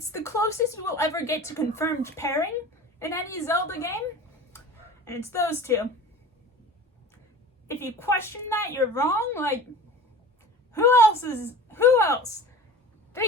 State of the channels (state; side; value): normal; both; correlation 0.38